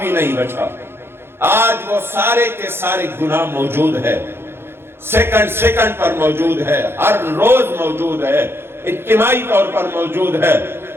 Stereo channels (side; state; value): left; late; 0.11 ms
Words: نہیں بچا۔ آج وہ سارے کے سارے گناہ موجود ہے، سیکنڈ پر موجود ہے، ہر روز موجود ہے، اجتماعی طور پر موجود ہے،